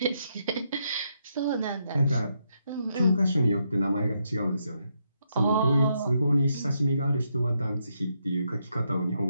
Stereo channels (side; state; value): both; inverted; correlation -0.79